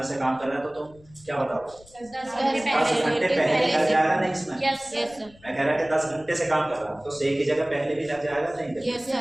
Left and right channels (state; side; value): noise; left; rumble, 25 dB below the sound